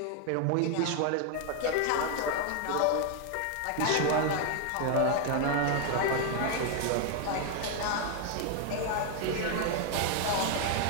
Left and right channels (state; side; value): different; both; correlation 0.00